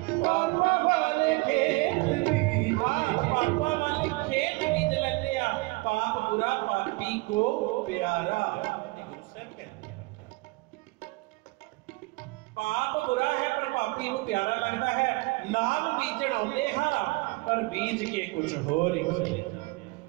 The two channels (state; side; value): quieter; left; 25.0 dB